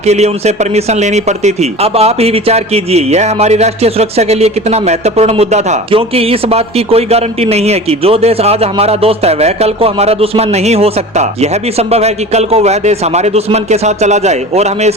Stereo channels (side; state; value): both; normal; correlation 0.36